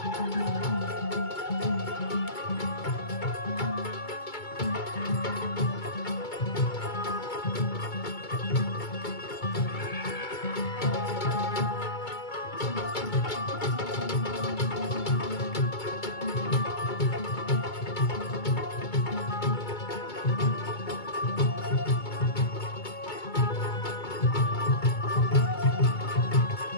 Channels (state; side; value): late; right; 2.2 ms